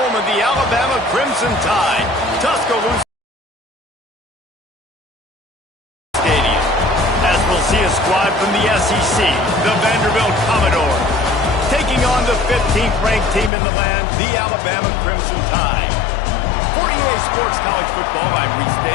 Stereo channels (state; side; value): drops out; right; at 13.5 s